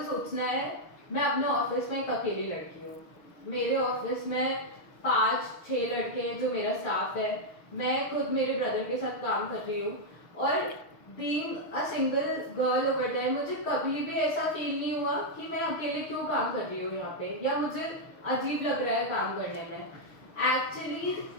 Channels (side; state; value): right; late; 6.6 ms